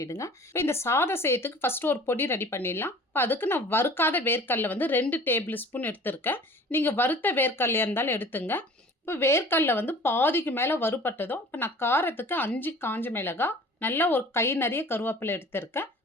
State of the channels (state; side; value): normal; both; correlation 0.45